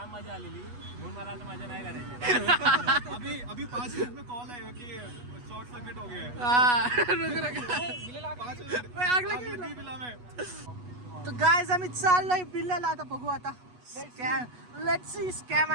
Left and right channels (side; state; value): left; late; 8.2 ms